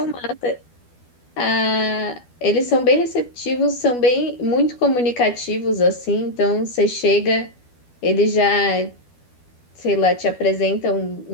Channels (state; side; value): late; right; 12 ms